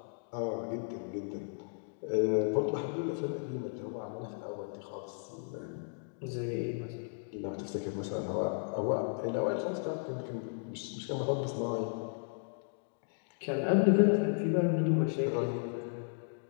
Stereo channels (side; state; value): right; silent; digital silence